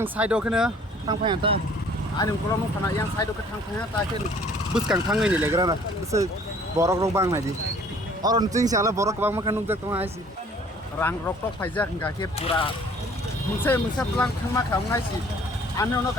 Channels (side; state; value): both; normal; correlation 0.55